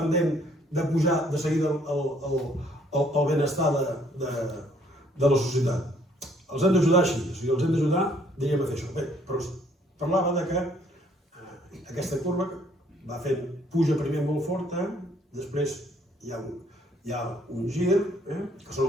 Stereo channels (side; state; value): both; normal; correlation 0.64